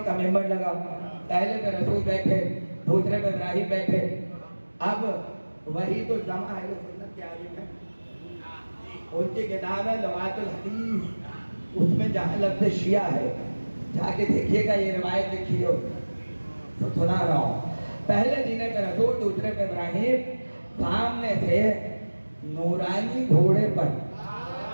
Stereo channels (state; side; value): inverted; both; correlation -1.00